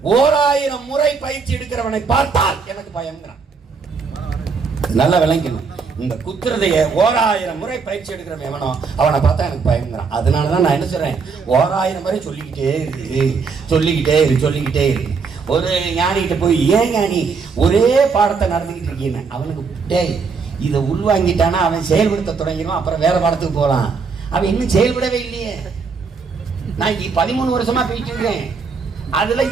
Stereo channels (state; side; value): quieter; left; 5.1 dB